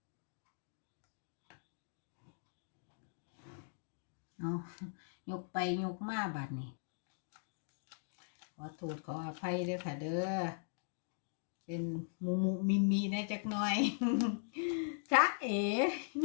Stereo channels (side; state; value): right; silent; digital silence